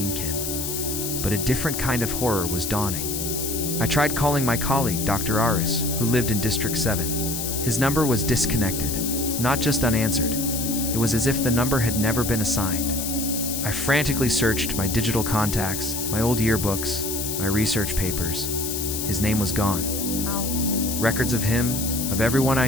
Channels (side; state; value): left; noise; hiss, 4 dB below the sound